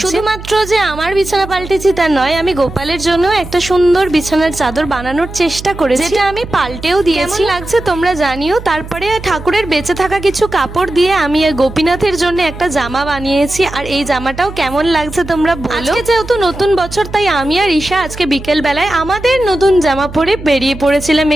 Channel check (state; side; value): noise; right; hum, 13 dB below the sound